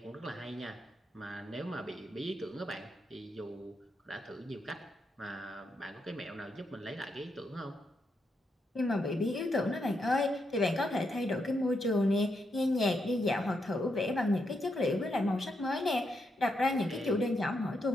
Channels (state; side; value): normal; both; correlation 0.81